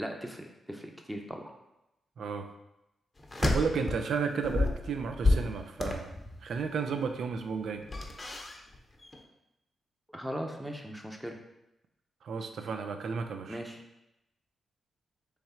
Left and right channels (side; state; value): both; normal; correlation 0.82